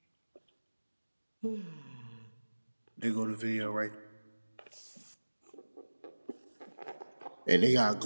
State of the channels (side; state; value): both; inverted; correlation -1.00